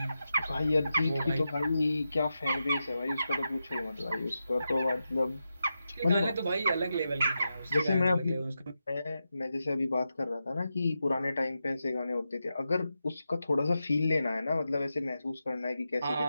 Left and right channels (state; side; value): inverted; both; correlation -0.89